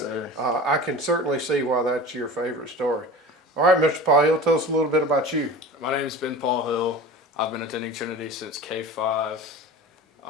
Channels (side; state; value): both; normal; correlation 0.35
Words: sir. I can certainly see why that's your favorite story. All right, Mr. Paul Hill, tell us a little bit about you. My name is Ben Paul Hill. I've been attending Trinity since K-5.